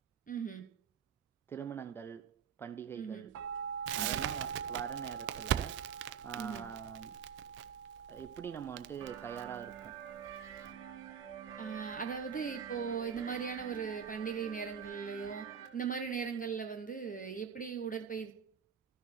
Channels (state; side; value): quieter; left; 7.3 dB